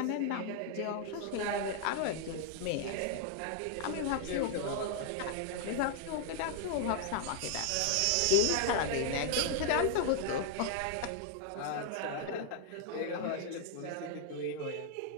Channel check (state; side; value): different; both; correlation 0.00